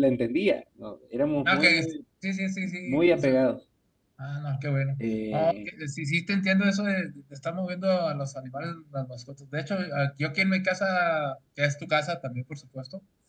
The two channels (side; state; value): both; identical; correlation 1.00